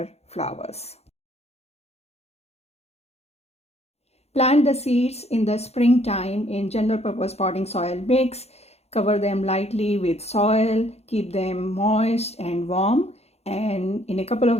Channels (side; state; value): right; late; 0.31 ms